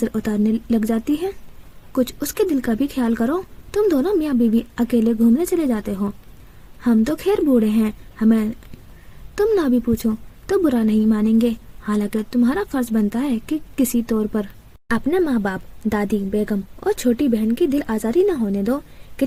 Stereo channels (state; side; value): identical; both; correlation 1.00